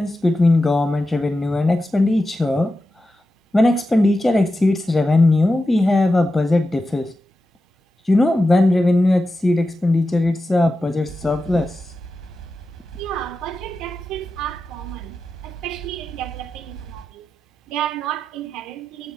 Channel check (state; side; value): normal; both; correlation 0.91